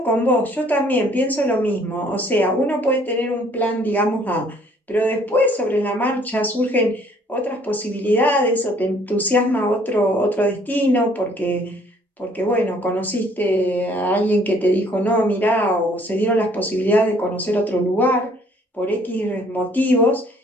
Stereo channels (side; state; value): both; normal; correlation 0.60